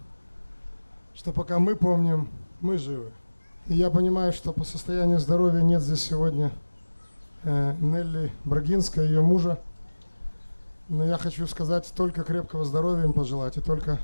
что пока мы помним, мы живы. И я понимаю, что по состоянию здоровья нет здесь сегодня Нелли Брагинска, ее мужа. Но я хочу сказать, только крепкого здоровья им пожелать. И только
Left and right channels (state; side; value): inverted; both; correlation -1.00